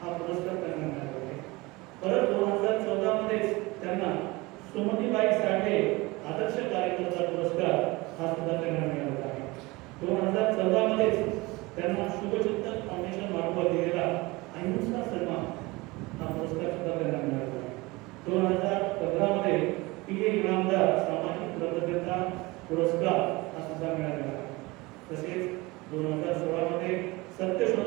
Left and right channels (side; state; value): left; quieter; 22.9 dB